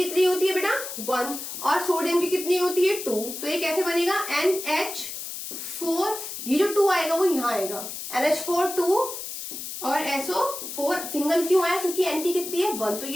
होती है बेटा, 1, और सोडियम की कितनी होती है, 2, तो ये कैसे बनेगा, NH4, ये जो 2 आएगा वो यहां आएगा, NH4 2 और SO4 सिंगल क्यों आया, क्योंकि N की कितनी है, 1, तो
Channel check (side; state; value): left; noise; hiss, 8 dB below the sound